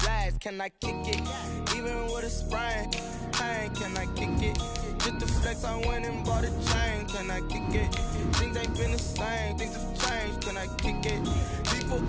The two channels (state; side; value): identical; both; correlation 1.00